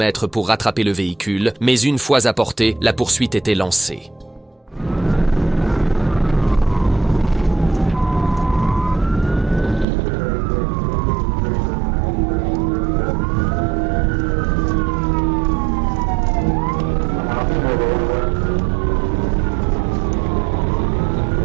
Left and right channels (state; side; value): drops out; left; at 9.9 s